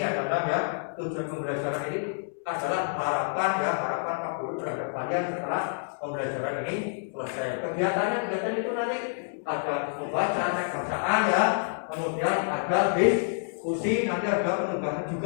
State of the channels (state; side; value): silent; right; digital silence